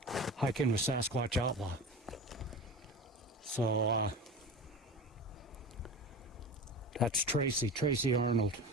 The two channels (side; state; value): both; normal; correlation 0.32